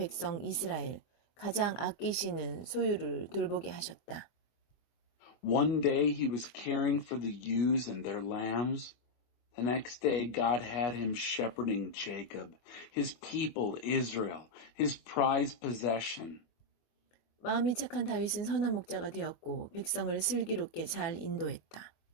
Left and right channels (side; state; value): right; late; 24 ms